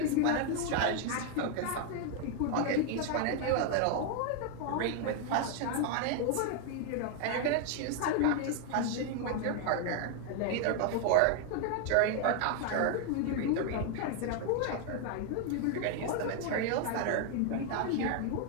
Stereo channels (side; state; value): both; different; correlation 0.00